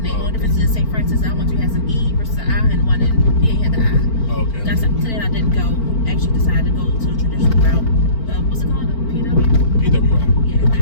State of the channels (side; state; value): right; late; 4.4 ms